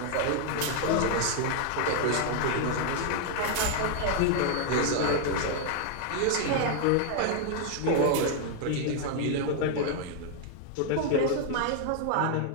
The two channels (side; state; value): both; different; correlation 0.00